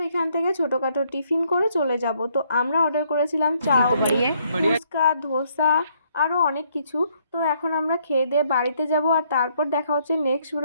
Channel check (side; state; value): both; inverted; correlation -0.69